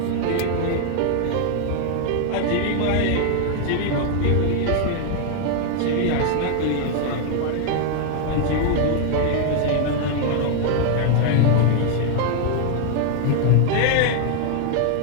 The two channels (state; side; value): different; both; correlation 0.00